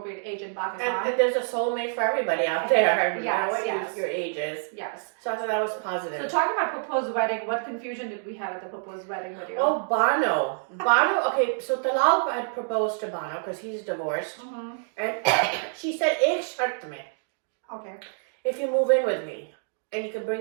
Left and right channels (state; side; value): silent; left; digital silence